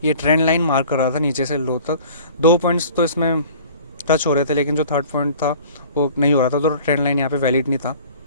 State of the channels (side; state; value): both; inverted; correlation -0.47